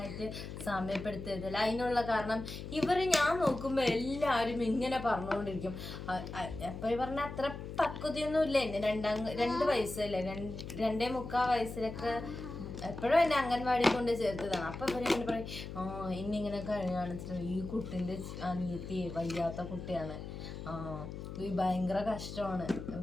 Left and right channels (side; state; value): left; noise; hum, 9 dB below the sound